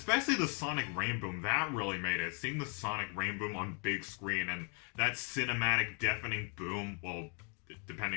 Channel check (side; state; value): right; quieter; 36.9 dB